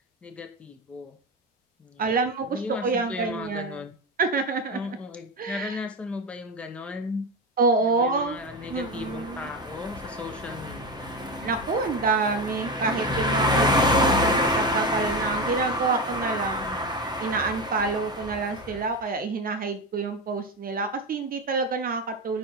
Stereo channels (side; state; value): both; normal; correlation 0.18